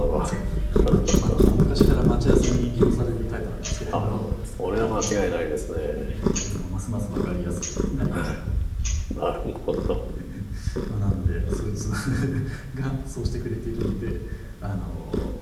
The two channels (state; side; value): identical; both; correlation 1.00